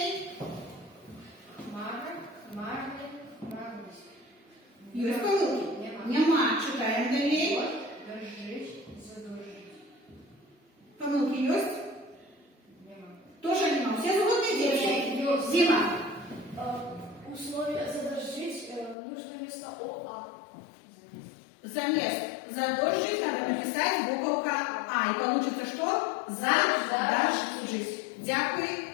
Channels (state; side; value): drops out; right; at 18.9 s